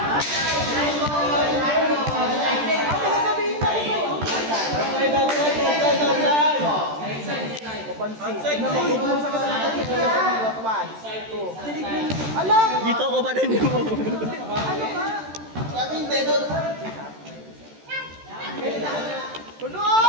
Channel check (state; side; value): late; left; 13 ms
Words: Dito ko ba rin mo? Ano nga? Kaming dedo. Puno!